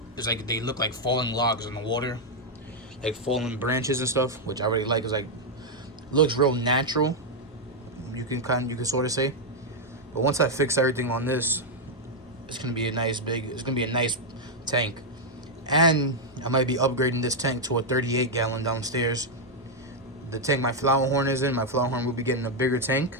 it's like they look like falling logs in the water, like fallen branches and stuff, which I really like. It's like, looks real natural. You can sort of say. But once I fix everything on this, it's gonna be a nice tank. And I might be upgrading this tank to a 38 gallon downstairs. The tank my flower horn is in, my flower horn will be getting a bigger tank,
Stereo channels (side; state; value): both; normal; correlation -0.01